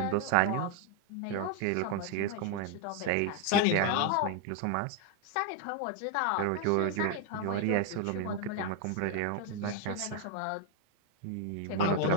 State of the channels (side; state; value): both; different; correlation 0.00